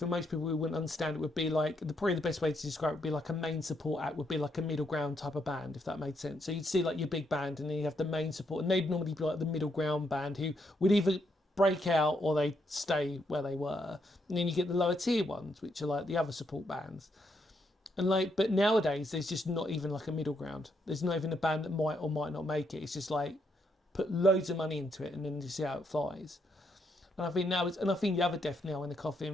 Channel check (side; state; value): both; normal; correlation 0.77